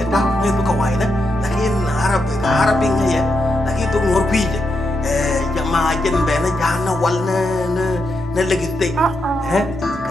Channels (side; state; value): both; normal; correlation 0.83